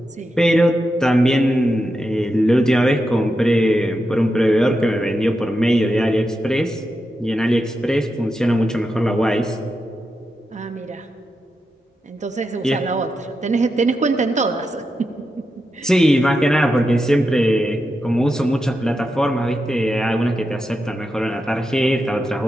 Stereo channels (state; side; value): normal; both; correlation 0.87